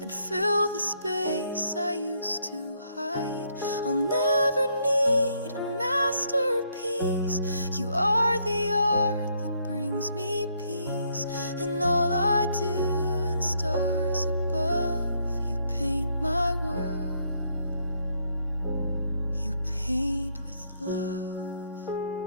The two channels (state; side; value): inverted; both; correlation -0.72